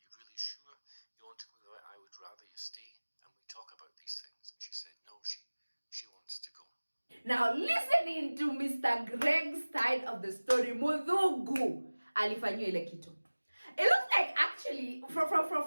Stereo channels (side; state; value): both; inverted; correlation -1.00